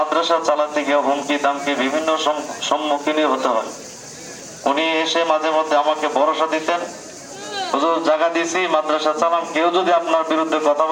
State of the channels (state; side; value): identical; both; correlation 1.00